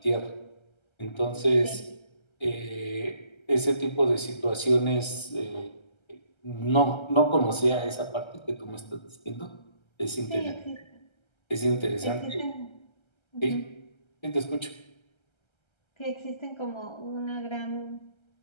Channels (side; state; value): right; late; 1.3 ms